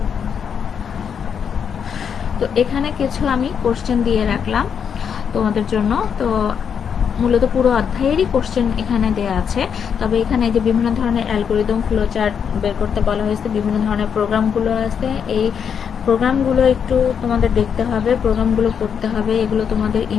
তো এখানে কিছু আমি কোশ্চেন দিয়ে রাখলাম তোমাদের জন্য। তো মূলত পুরো অধ্যায়েরই কোশ্চেন এখানে দেয়া আছে, তবে এখানে যে বিভিন্ন ধরনের অ্যালগরিদম, ফ্লোচার্ট বের করতে বলা হয়েছে, বিভিন্ন ধরনের প্রোগ্রামগুলো আছে, এই প্রোগ্রামগুলো একটু তোমাদের দেখতে হবে, প্রোগ্রামগুলো করতে হবে, এগুলো তোমাদের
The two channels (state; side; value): quieter; right; 7.3 dB